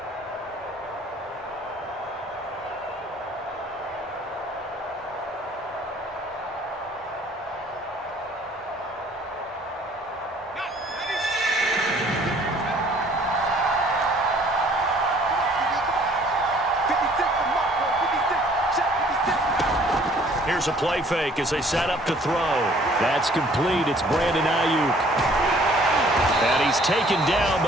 Here's a play fake as they set up to throw. That's complete. It's Brandon Ayuk. And he's taken down,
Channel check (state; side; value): normal; both; correlation 0.57